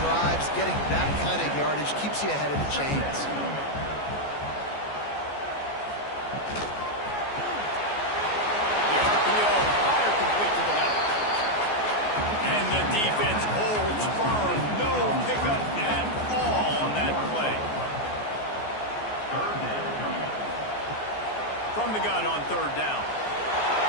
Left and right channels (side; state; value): right; late; 14 ms